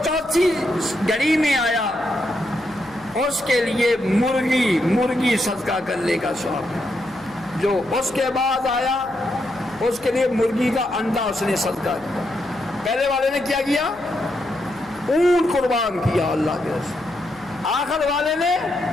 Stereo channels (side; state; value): left; noise; hum, 25 dB below the sound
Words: چوتھی گھڑی میں آیا اس کے لیے مرغی صدقہ کرنے کا ثواب. جو اس کے بعد آیا اس کے لیے مرغی کا انڈا اس نے صدقہ کیا. پہلے والے نے کیا کیا؟ اونٹ قربان کیا اللہ کے رسول. آخر والے نے